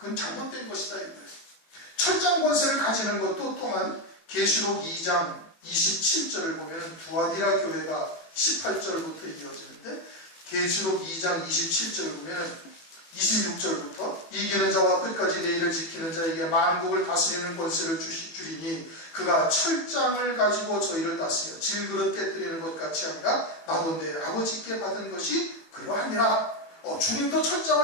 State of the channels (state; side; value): late; right; 18 ms